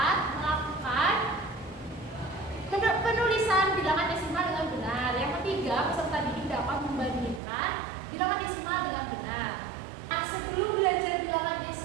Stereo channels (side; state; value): left; drops out; at 7.4 s